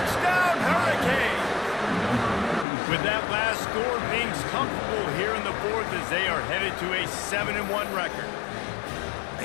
Hurricanes! With that last score, things comfortable here in the 4th as they are headed to a 7-1 record.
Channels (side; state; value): right; drops out; at 2.7 s